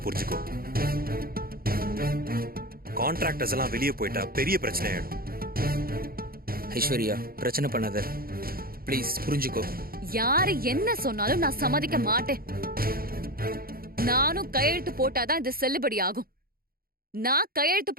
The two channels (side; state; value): left; late; 0.43 ms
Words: புரிஞ்சுக்கோ. கான்ட்ராக்டர்ஸ் எல்லாம் வெளியே போயிட்டா பெரிய பிரச்சனை ஆயிடும். ஐஸ்வர்யா, பிரச்சனை பண்ணாத, ப்ளீஸ் புரிஞ்சுக்கோ. யாரு என்ன சொன்னாலும் நான் சம்மதிக்க மாட்டேன். நானும் கையெழுத்து போட்டாதான் இது செல்லுபடி ஆகும். நான் கையெழுத்து